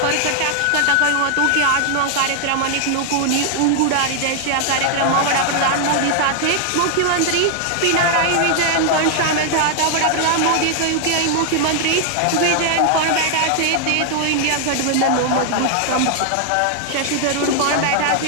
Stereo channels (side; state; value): both; different; correlation 0.00